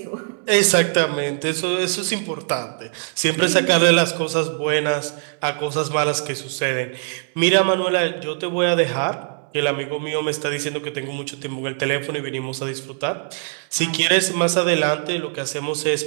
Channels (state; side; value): silent; left; digital silence